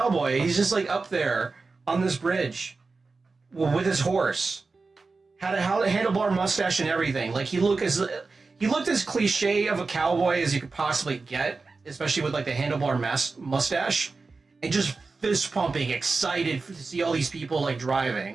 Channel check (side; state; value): left; quieter; 4.1 dB